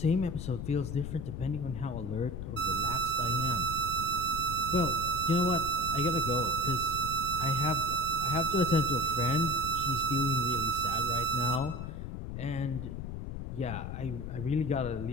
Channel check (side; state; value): left; noise; rumble, 6 dB below the sound